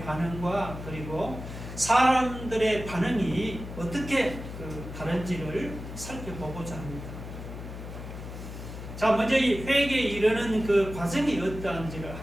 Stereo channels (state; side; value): noise; left; hum, 10 dB below the sound